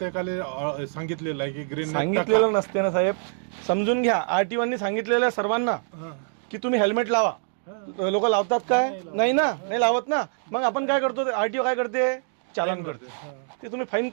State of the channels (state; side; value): silent; left; digital silence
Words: सांगितलेलं आहे की ग्रीन. सांगितलेलं नसते ना साहेब, समजून घ्या. आरटीओनी सांगितलेलं आहे सर्वांना की तुम्ही हेल्मेट लावा. लोक लावतात काय? नाही ना, नाही लावत ना. मग आपण काय करतो, आरटीओ काय करते? चालन करते. ते तुम्ही फाईन,